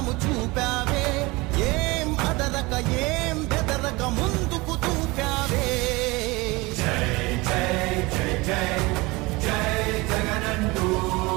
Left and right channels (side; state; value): left; quieter; 23.4 dB